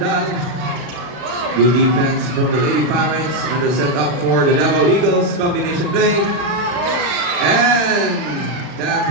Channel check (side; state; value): left; late; 40 ms